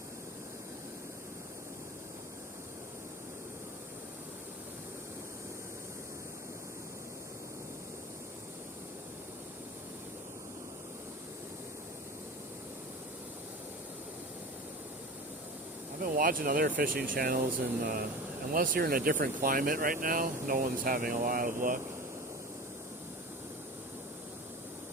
I've been watching other fishing channels, and unless you're in a different climate right now, no one's having a lot of luck.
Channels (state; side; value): normal; both; correlation 0.33